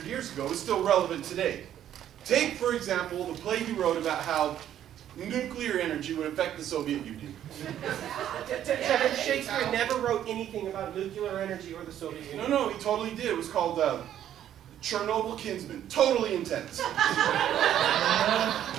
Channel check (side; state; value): left; quieter; 10.9 dB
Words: years ago is still relevant today. Take, for example, the play he wrote about how nuclear energy would affect the Soviet Union. Devin, Shakespeare never wrote anything about nuclear energy or the Soviet Union. No, he totally did. It was called Chernobyl Kinsman. Totally intense.